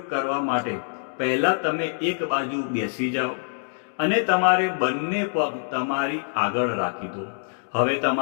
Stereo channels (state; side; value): silent; right; digital silence